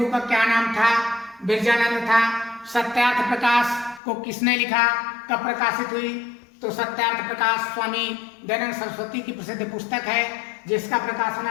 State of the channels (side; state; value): right; drops out; at 4.0 s